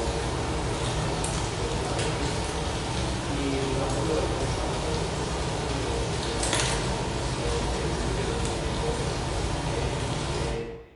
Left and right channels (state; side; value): identical; both; correlation 1.00